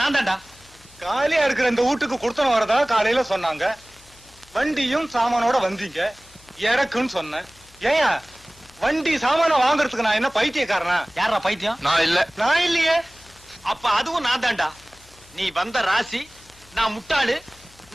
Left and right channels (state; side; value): noise; left; hum, 27 dB below the sound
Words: நான் தான்டா. காலியா இருக்கிற இந்த வீட்டுக்கு குடுத்தனம் வரதா காலையில சொன்னாங்க. வண்டியும் சாமானோட வந்தீங்க, இறக்குன்னு சொன்னேன். ஏயா, வண்டி சாமான வாங்குறதுக்கு நான் என்ன பைத்தியக்காரனா? யாரா பைத்தியம்? நான் இல்ல. நான் இல்லையே. அப்ப அதுவும் நான் தான்டா. நீ வந்த ராசி, நான் முட்டாளு,